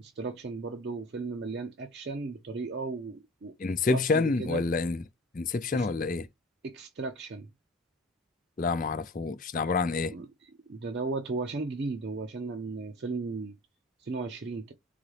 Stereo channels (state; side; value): normal; both; correlation 0.41